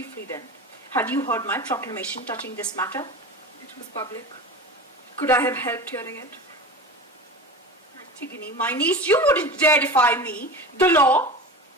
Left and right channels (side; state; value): both; normal; correlation 0.31